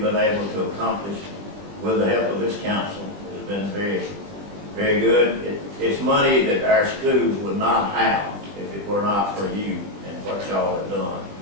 been able to accomplish with the help of this council has been very, very good. It's money that our schools would not have if it were not for you and what y'all have done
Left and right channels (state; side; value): late; left; 20 ms